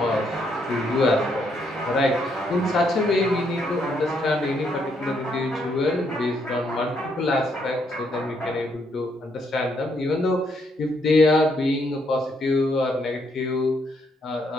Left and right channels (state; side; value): normal; both; correlation 0.74